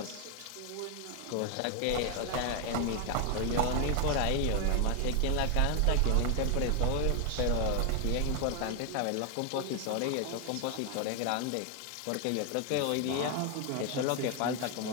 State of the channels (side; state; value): both; different; correlation 0.01